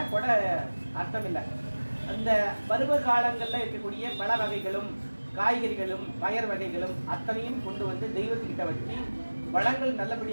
கொடை அர்த்தம் இல்லை. அந்த பருவ காலங்கள்ல இருக்கக்கூடிய பல வகைகளும் காய்கறிகளும் பயர் வகைகளும் அத்தனையும் கொண்டு வந்து தெய்வத்துக்கிட்ட வச்சு வளங்கள்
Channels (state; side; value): inverted; both; correlation -1.00